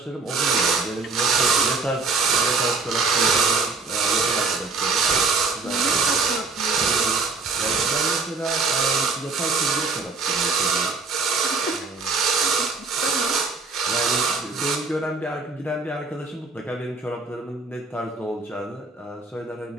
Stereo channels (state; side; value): quieter; left; 4.2 dB